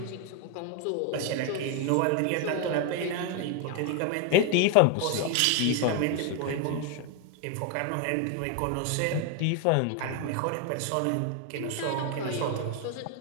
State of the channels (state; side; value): different; both; correlation 0.01